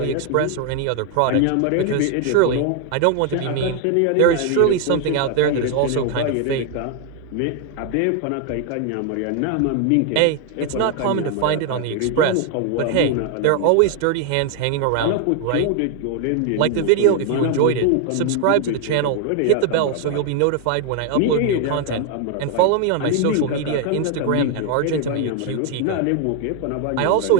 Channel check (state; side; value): different; both; correlation 0.00